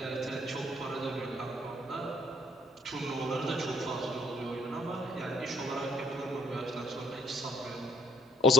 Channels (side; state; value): both; normal; correlation 0.64